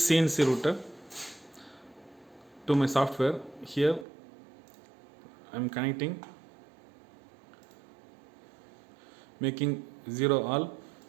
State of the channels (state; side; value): drops out; left; at 4.0 s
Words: CNC router to my software. Here I am connecting, making 0 all.